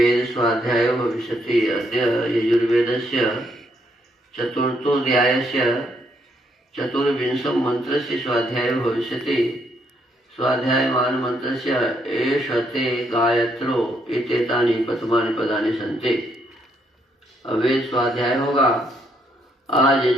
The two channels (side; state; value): both; normal; correlation 0.73